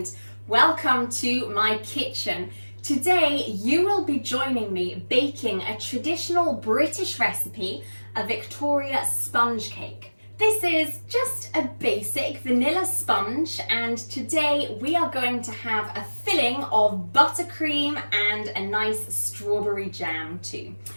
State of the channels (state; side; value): inverted; both; correlation -1.00